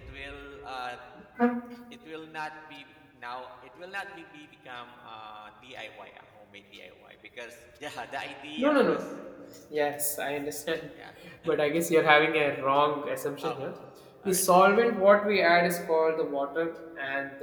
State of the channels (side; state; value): both; identical; correlation 1.00